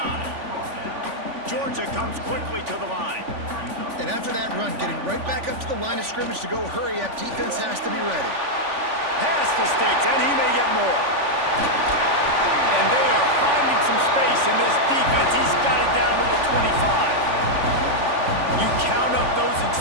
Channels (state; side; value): late; left; 3.5 ms